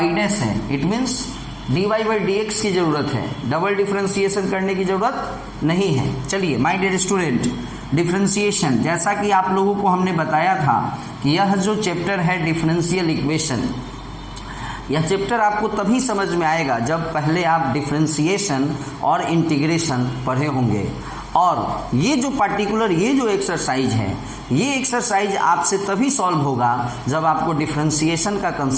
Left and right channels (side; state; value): both; identical; correlation 1.00